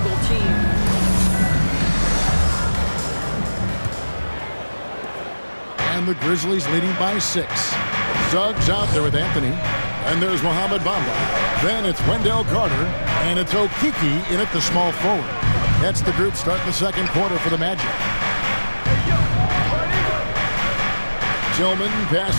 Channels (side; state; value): both; inverted; correlation -1.00